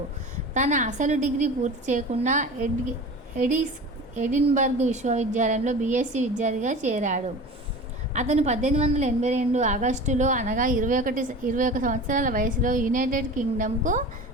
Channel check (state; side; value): normal; both; correlation 0.35